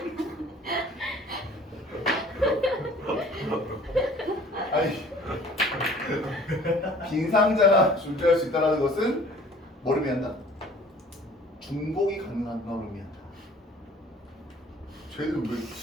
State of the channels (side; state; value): both; normal; correlation 0.50